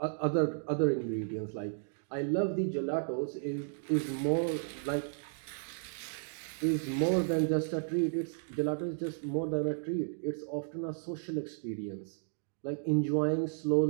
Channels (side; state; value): left; silent; digital silence